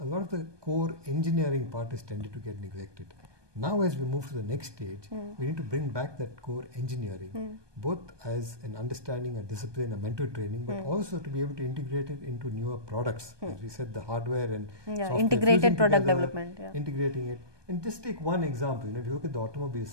a lot of the core engineering part has tended to get neglected. Now as we move to the next stage, we need to bring back that core engineering, both as an understanding, a discipline, a mental training, but also to be able to integrate it into newer products. As we said, the hardware and software, integrated product together, development. Integrating it. And just take one example, you know, if you look at the automobile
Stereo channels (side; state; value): left; late; 1.2 ms